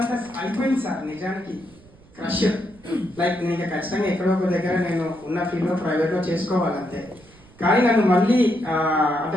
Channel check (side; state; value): right; noise; rumble, 26 dB below the sound